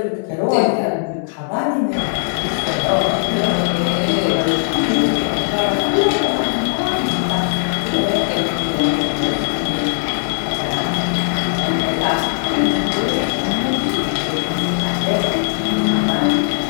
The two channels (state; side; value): silent; right; digital silence